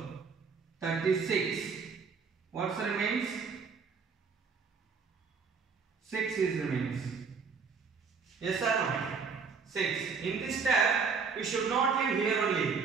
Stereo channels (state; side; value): quieter; left; 5.4 dB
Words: 36. What remains? 6 is remains. Yes or no? 6. In this step, we should not leave here